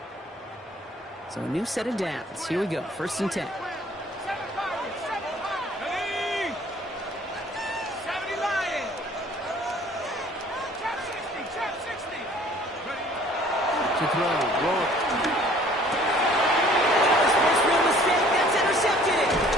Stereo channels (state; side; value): normal; both; correlation 0.54